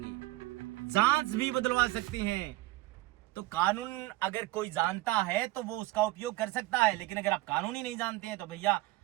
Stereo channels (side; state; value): left; quieter; 19.0 dB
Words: जांच भी बदलवा सकते हैं। तो कानून अगर कोई जानता है तो वो उसका उपयोग कर सकता है, लेकिन अगर आप कानून ही नहीं जानते हैं तो भैया